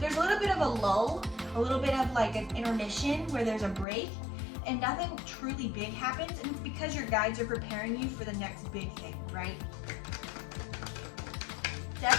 there's a little bit of a lull, a little bit of like an intermission where there's a break and nothing truly big happens, and it's because your guides are preparing you for the next big thing, right?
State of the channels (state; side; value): drops out; right; at 3.9 s